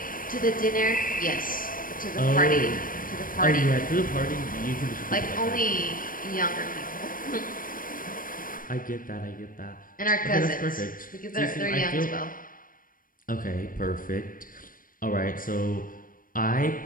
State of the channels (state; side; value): late; right; 0.40 ms